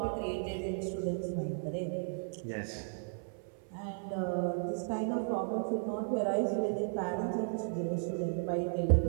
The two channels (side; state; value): left; silent; 55 dB below the other